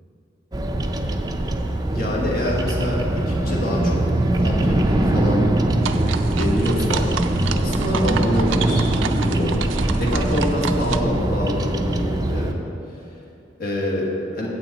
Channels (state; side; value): normal; both; correlation 0.76